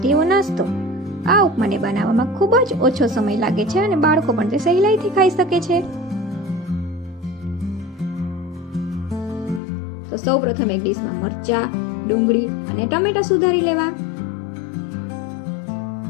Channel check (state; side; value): drops out; right; at 9.6 s